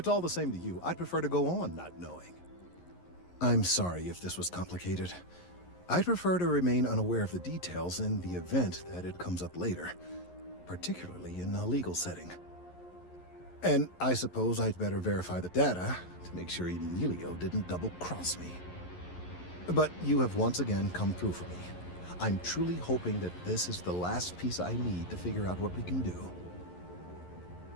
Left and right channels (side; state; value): right; late; 11 ms